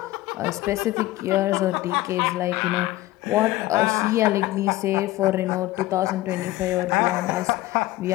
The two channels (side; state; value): right; quieter; 17.2 dB